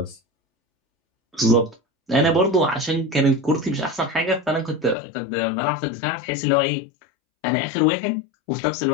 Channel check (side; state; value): right; drops out; at 5.0 s